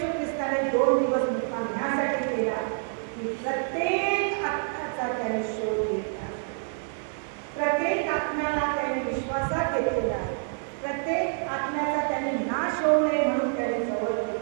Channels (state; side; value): silent; left; 60 dB below the other